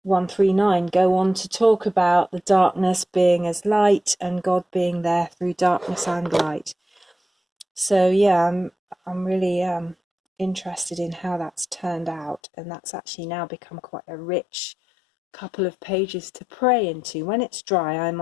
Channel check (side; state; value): right; drops out; at 12.4 s